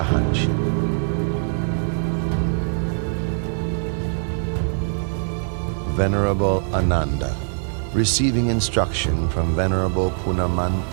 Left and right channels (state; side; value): silent; left; 62 dB below the other